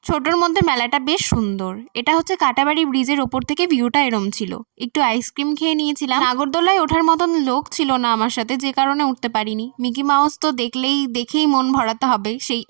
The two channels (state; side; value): silent; left; digital silence